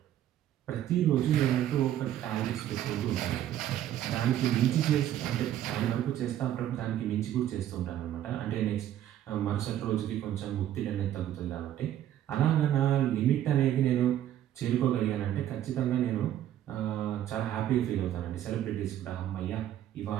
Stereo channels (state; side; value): quieter; left; 11.8 dB